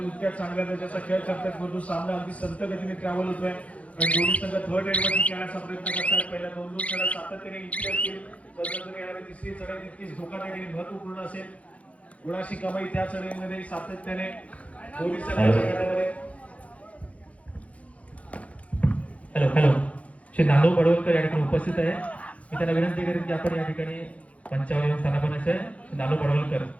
इतक्या चांगल्या दर्जाचा खेळ करतात, परंतु सामना अगदी संत गतीने ट्रॅव्हल होतोय. आणि दोन्ही संघ थर्ड रेड वरती खेळण्याचा प्रयत्न करतात. पहिल्या 2-2 चढा सातत्याने इतकी असतील, तर येणारी तिसरी चढाई तितकीच धोकादायक आणि महत्वपूर्ण असेल. गुणाशी कमाई त्या चढाईमध्ये सातत्याने दोन्ही संघांच्या गटामध्ये. हॅलो श्री नानू पडवलकर या ठिकाणी उपस्थित आहे. मी त्यांना विनंती करेन की आपण या ठिकाणी मंचावर येऊन स्थानापन्न आहे. नानू पडवलकर,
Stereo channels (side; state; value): right; late; 0.065 ms